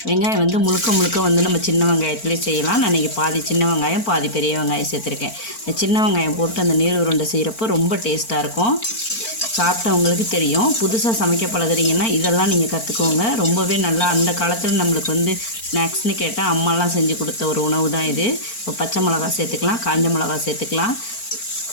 வெங்காயம் முழுக்க நம்ம சின்ன வெங்காயத்துலேயே செய்யலாம். நான் இன்றைக்கி பாதி சின்ன வெங்காயம் பாதி பெரிய வெங்காயம் சேர்த்துருக்கேன். இந்த சின்ன வெங்காயம் போட்டு அந்த நீர் உருண்டை செய்கிறப்போ ரொம்ப டேஸ்ட்டாக இருக்கும். சாப்பிட்டவங்களுக்கு தெரியும். புதுசாக சமைக்க பழகுறீங்கன்னா இதெல்லாம் நீங்கள் கற்றுக்கோங்க. ரொம்பவே நல்லா அந்த காலத்தில் நம்மளுக்கு ஸ்நாக்ஸ்னு கேட்டால் அம்மாலாம் செஞ்சு கொடுத்த ஒரு உணவு தான் இது. இப்போ பச்சை மிளகா சேர்த்துக்கலாம், காஞ்ச மிளகா சேர்த்துக்கலாம்,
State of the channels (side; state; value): right; late; 4.4 ms